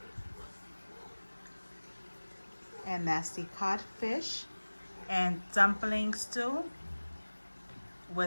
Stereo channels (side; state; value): both; inverted; correlation -1.00